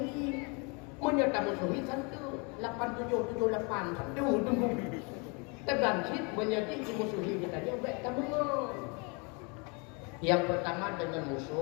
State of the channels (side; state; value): right; quieter; 32.3 dB